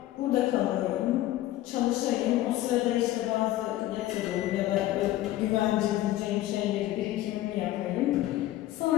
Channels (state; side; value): quieter; right; 14.9 dB